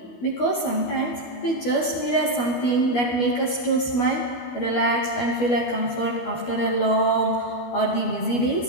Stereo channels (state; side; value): late; right; 12 ms